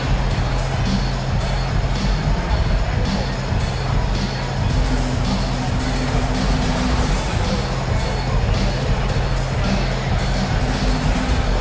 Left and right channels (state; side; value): identical; both; correlation 1.00